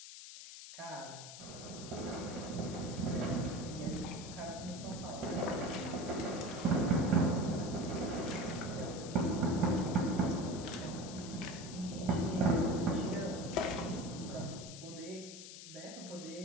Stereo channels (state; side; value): noise; left; hiss, 12 dB below the sound